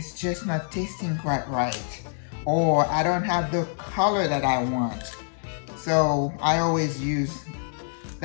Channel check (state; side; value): silent; right; digital silence